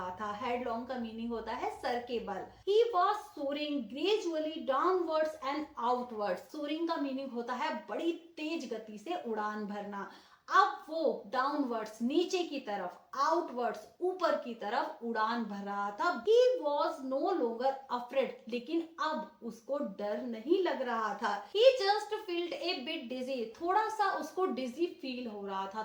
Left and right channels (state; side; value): identical; both; correlation 1.00